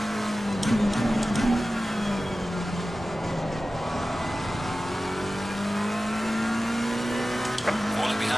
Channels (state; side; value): normal; both; correlation 0.95